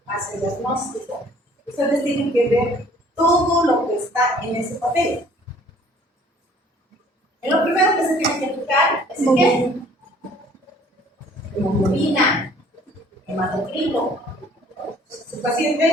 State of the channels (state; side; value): normal; both; correlation 0.56